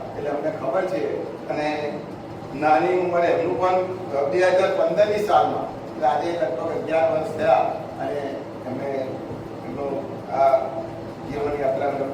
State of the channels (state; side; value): identical; both; correlation 1.00